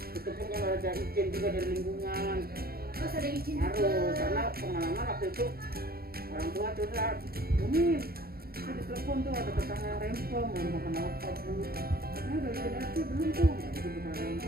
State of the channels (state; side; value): late; left; 0.44 ms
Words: Itu pun kalau ada izin juga dari lingkungan. Terus ada izin Harus, karena pengalaman waktu itu orang tua curhat, Bumi, saya ditelepon tuh ada tetangga yang rempong, mau makan apa bu? Karena udah izin RT belum tuh, ya itu bukan